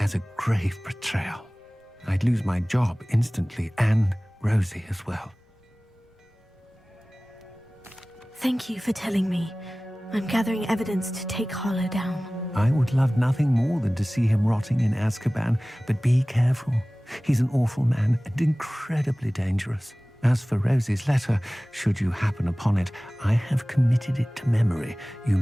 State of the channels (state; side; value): normal; both; correlation 0.98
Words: a grave betrayal. I'd lose my job instantly, and Rosie as well. Thank you for telling me. I'm gathering evidence to take Harlow down. I would love nothing more than to see him rotting in Azkaban, but be careful. He's an awful man and incredibly dangerous. As for Rosie's letter, should you happen upon it, I have committed it to memory. You